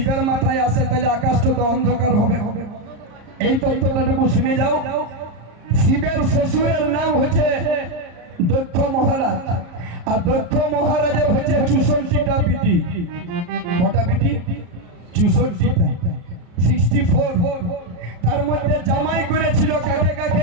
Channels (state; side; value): late; left; 34 ms